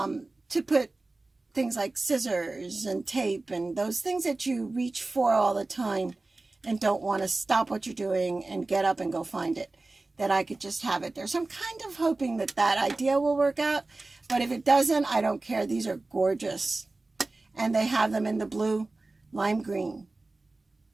put things like scissors and tape and those things that you reach for all the time and don't want to stop what you're doing and get up and go find it, that I could just have it there. So I'm kind of hoping that that idea will work out, but if it doesn't, I don't care. These are gorgeous, and they have them in the blue, lime green,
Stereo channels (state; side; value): quieter; left; 3.2 dB